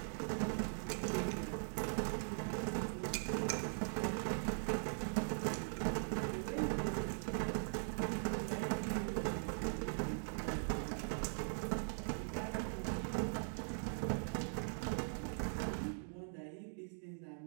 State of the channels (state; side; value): silent; left; digital silence